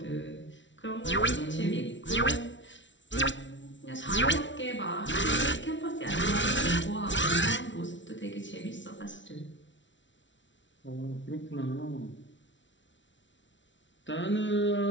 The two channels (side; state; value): right; late; 0.55 ms